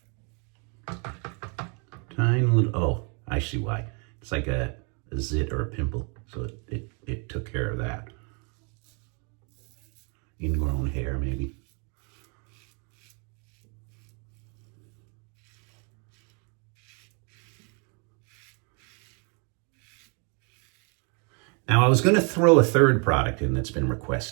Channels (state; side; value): quieter; left; 36.5 dB